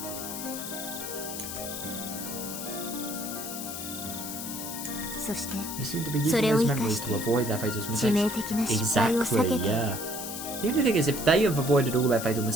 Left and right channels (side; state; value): left; noise; hiss, 7 dB below the sound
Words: They seem to be using those memories to avoid their fatal mistakes. Exactly, yeah. The only thing is, if they have avoided all their fatal